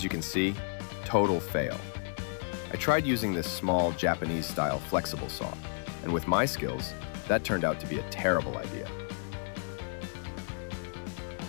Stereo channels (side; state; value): right; silent; digital silence